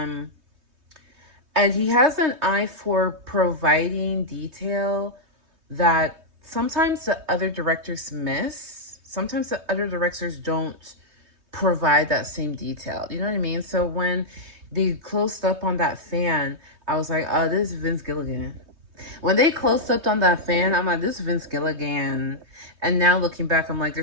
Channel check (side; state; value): left; late; 3.2 ms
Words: he has an eye for providing detail that sometimes the other directors miss. Sometimes the other directors don't provide that same detail. You know what I mean? So when they closed up on that fan, I was like, oh, this is Vince Gilligan. When they closed up on that fan, I'm like, this is Vince Gilligan. And now looking back, I'm like,